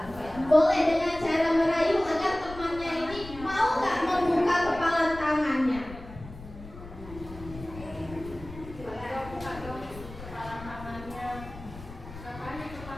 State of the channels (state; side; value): noise; left; rumble, 15 dB below the sound